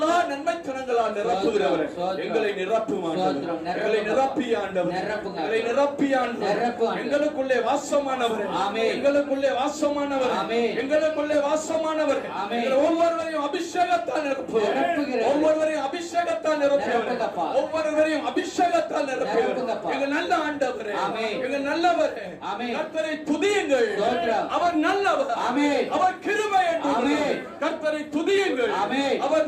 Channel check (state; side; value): identical; both; correlation 1.00